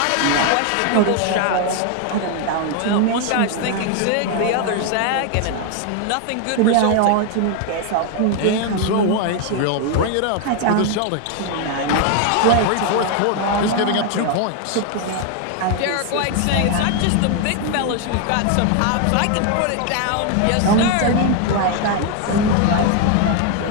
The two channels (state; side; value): different; both; correlation 0.01